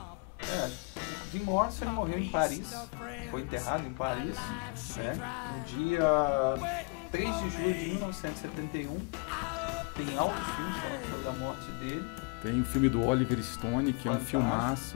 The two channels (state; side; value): quieter; right; 33.1 dB